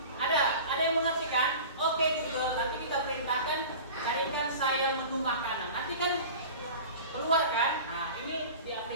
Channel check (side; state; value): both; inverted; correlation -0.37